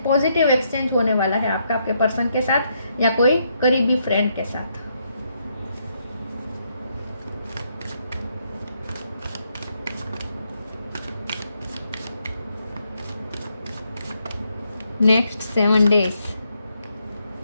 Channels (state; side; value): inverted; both; correlation -0.77